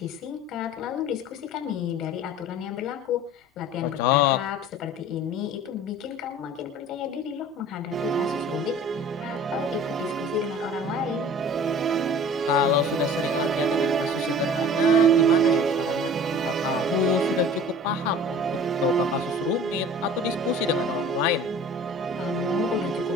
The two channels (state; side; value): normal; both; correlation 0.44